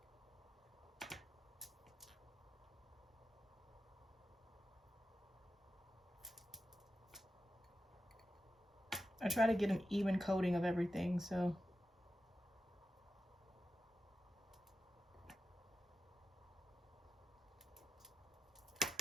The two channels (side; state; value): both; normal; correlation 0.90